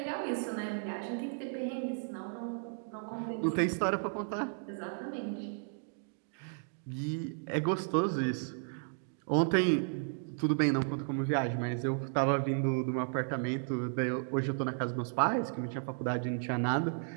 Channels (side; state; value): left; silent; 55 dB below the other